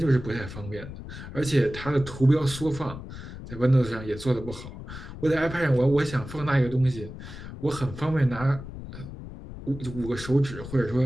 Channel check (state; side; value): noise; left; rumble, 12 dB below the sound